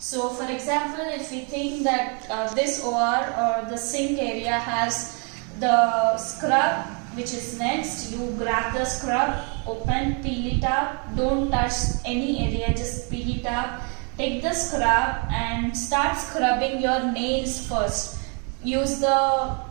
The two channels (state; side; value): quieter; left; 36.7 dB